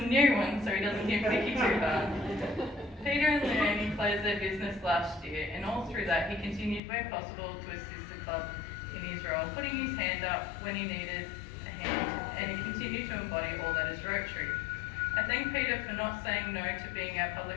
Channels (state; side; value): drops out; right; at 6.8 s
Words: new ones so he doesn't get picky too hard. Peter and Leonie closed their business last year, and all through that he continued where possible to assist the club in his role, putting his hand up when he needed a hand, and he continued to embody all that is Rotary. I thank Peter for not saying no to being our